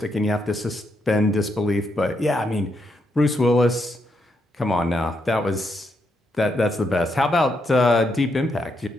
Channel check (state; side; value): normal; both; correlation 0.80